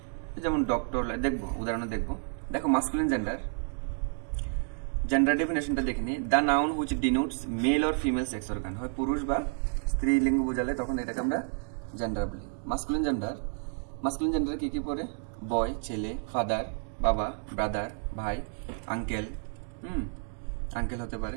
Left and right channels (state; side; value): silent; left; 58 dB below the other